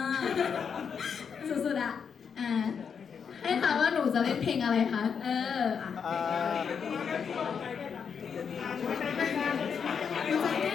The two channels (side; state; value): right; quieter; 6.7 dB